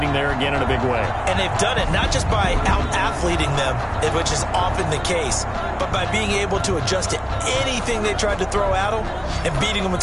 there again in a big way. And they've done it not just by out-athleting them, which is often the case, but by being able to adjust to anything they tried to throw at them and beating them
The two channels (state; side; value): identical; both; correlation 1.00